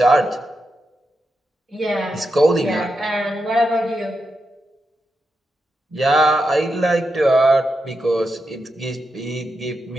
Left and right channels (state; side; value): normal; both; correlation 0.86